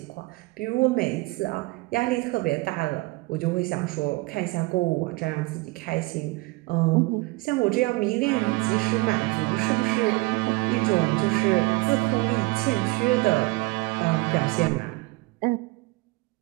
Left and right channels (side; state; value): left; quieter; 23.3 dB